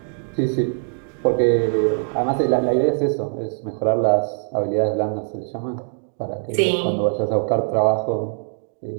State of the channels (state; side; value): silent; left; digital silence